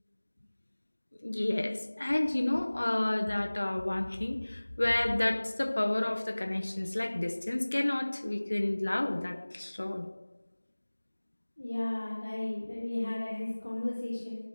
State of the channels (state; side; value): inverted; both; correlation -1.00